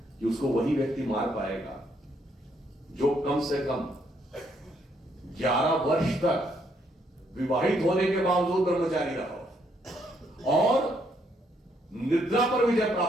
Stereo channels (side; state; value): both; normal; correlation 0.72